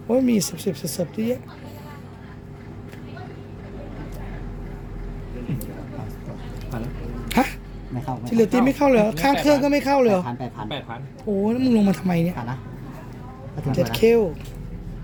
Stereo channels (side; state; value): both; identical; correlation 1.00